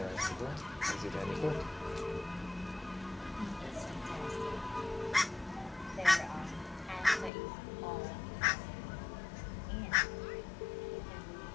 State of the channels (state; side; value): drops out; right; at 7.3 s